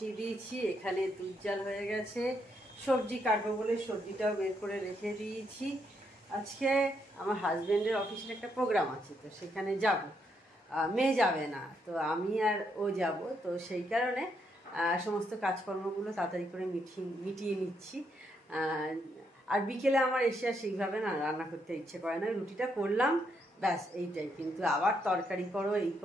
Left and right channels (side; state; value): both; normal; correlation 0.77